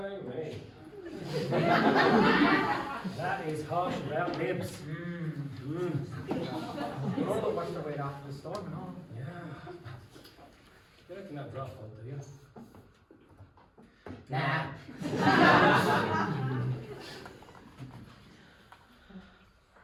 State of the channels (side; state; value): both; identical; correlation 1.00